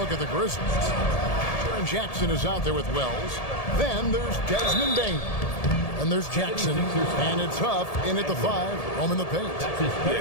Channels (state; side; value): late; right; 1.7 ms